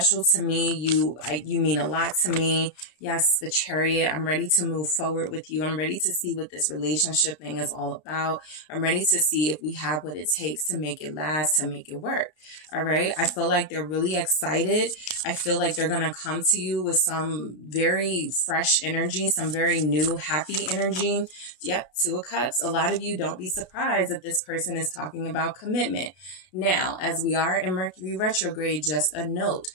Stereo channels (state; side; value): late; right; 33 ms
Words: to me. You mean a lot to me. Yes, the Chariot. I'm ready to move forward with you. I'm ready to see what this relationship thing is all about. I'm ready to see if we have what it takes to make it last, to make it work. All right. I feel like they're really excited. I feel like they're going to come to you with some very fresh energy, some very new, happy energy. Yep. Two of Cups. A lot of you, don't be surprised if this person is talking about commitment. Now, as we are in Mercury retrograde, just a note.